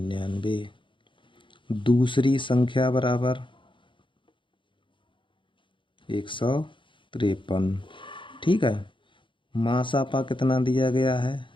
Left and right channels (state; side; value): late; right; 0.24 ms